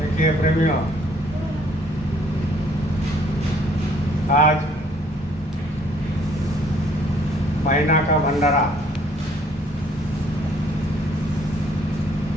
प्रेमियों, आज महीना का भंडारा,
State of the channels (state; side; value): normal; both; correlation 0.62